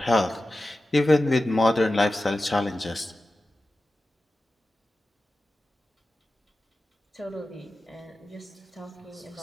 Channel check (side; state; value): both; normal; correlation 0.94